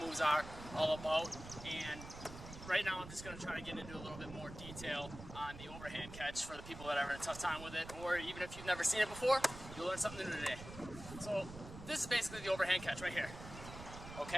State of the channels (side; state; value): right; noise; rumble, 12 dB below the sound